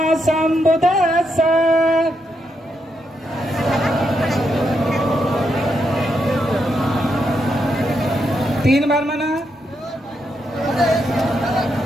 सम्बुद्दस्सा। तीन बार मना।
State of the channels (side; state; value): both; normal; correlation 0.81